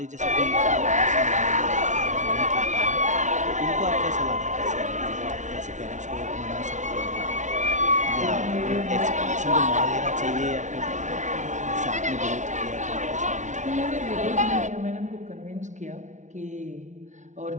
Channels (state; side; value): late; left; 0.36 ms